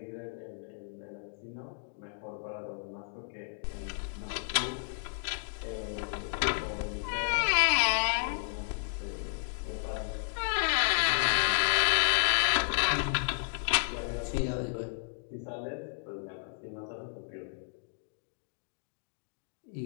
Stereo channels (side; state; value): right; silent; digital silence